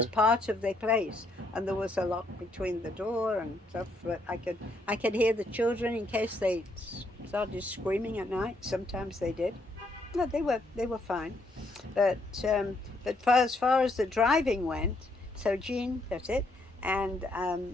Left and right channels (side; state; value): both; normal; correlation 0.74